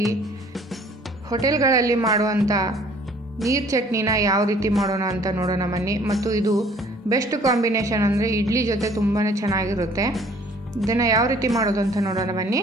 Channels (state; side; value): normal; both; correlation 0.55